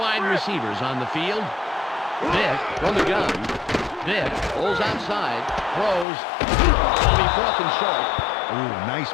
receivers on the field. Vick from the gun. Vick pulls outside, throws. It'll be 4th and short. Ooh, nice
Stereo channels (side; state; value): right; drops out; at 6.1 s